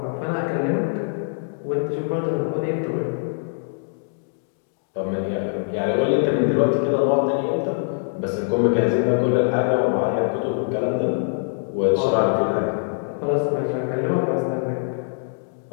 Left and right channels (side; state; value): right; silent; digital silence